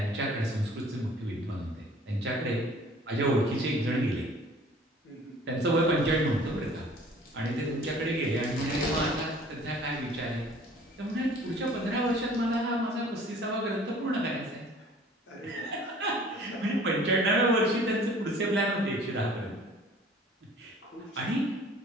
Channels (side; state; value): both; normal; correlation 0.51